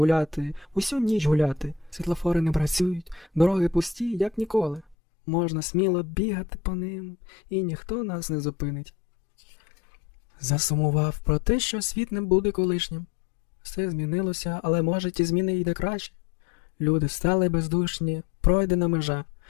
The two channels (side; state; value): right; drops out; at 5.0 s